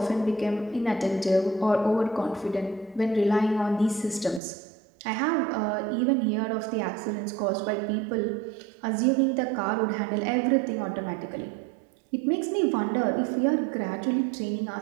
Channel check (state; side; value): drops out; left; at 4.4 s